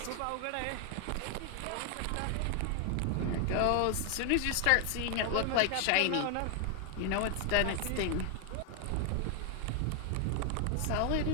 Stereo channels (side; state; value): both; different; correlation 0.00